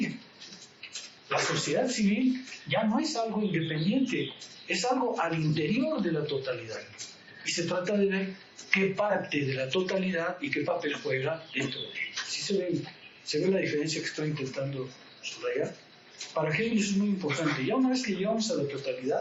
La sociedad civil ya no es algo independiente, es algo al interior de la totalidad. Y se trata de ver qué parte de la totalidad y qué papel juega dentro de ella. ¿Sí se ve la diferencia que estoy intentando subrayar? Para Hegel eso es muy importante. Ya una vez que llegamos a la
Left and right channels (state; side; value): identical; both; correlation 1.00